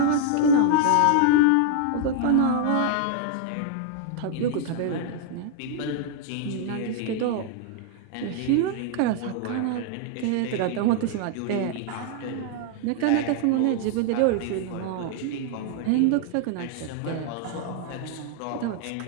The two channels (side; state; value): both; different; correlation 0.00